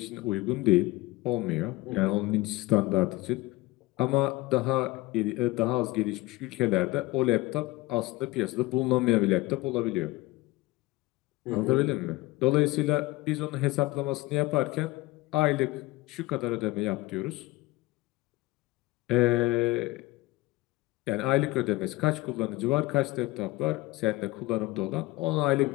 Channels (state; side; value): quieter; right; 19.9 dB